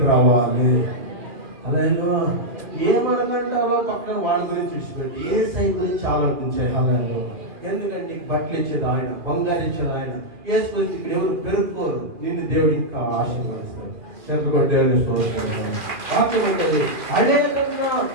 రావాలి. హల్లెలూయా. ఏమనకంటావో పక్కన వాళ్ళ గురించి విడిచిపెట్టి యేసయ్య గురించి ఆలోచించాయి. హల్లెలూయా. ఎందుకంటే నీకు బట్టలు ఇచ్చేది ఆయన, బంగారు ఇచ్చేది ఆయన. యేసుకొని ఇక్కడ ఎవరు పెరుక్కోరు, నిన్ను దేవుడు ఇంకా ఆశీర్వదిస్తాడు. చేతులు దేవుని వాక్యం ఉంటుంది, అనేకంగా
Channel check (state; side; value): late; left; 2.4 ms